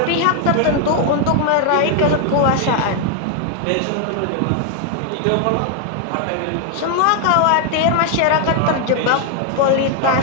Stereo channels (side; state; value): both; different; correlation 0.00